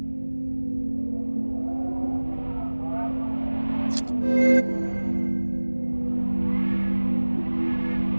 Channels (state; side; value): inverted; both; correlation -1.00